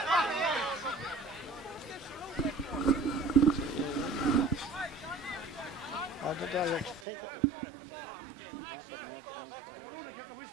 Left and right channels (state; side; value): drops out; left; at 7.0 s